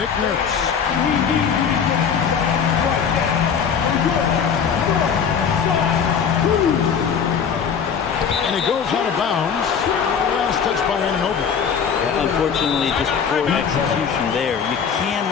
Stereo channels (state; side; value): quieter; right; 7.0 dB